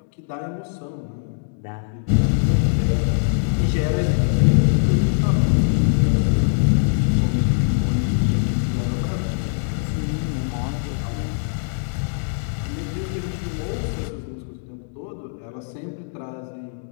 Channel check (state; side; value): silent; right; digital silence